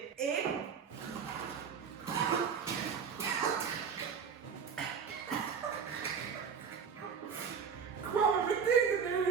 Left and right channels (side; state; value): left; quieter; 6.6 dB